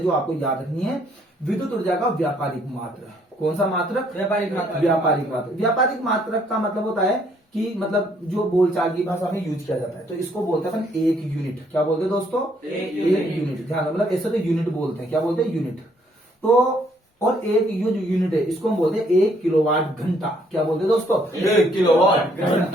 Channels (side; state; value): both; normal; correlation 0.67